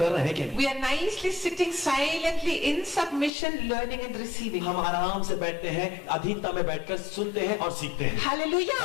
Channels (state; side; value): drops out; right; at 3.3 s